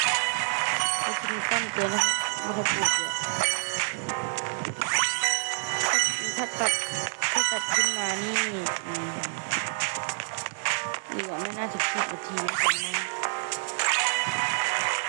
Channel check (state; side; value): silent; left; digital silence